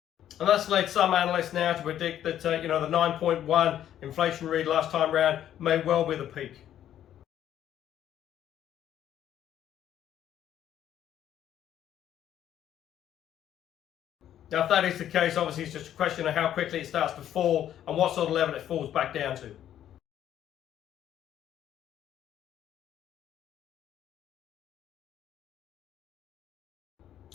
And that's led some analysts now to predict that the 9.1 inflation read last time round may well be the peak. Now, if that is the case, obviously it's just a question of how quickly it starts to fall and what sort of level it falls back down to.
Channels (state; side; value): quieter; right; 11.0 dB